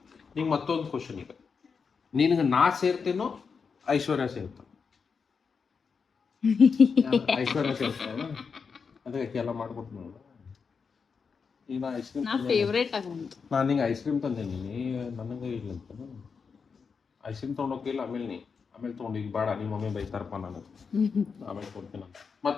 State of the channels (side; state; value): right; quieter; 5.6 dB